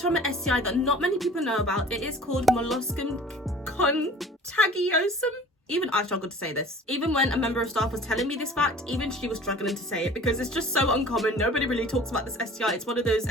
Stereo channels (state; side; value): normal; both; correlation 0.45